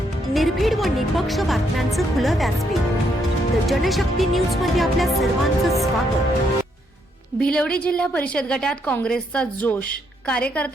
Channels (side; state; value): both; normal; correlation 0.75